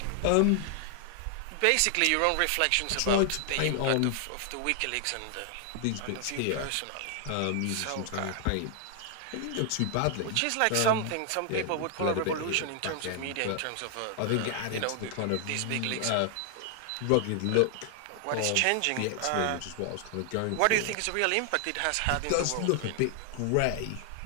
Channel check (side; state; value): both; different; correlation 0.00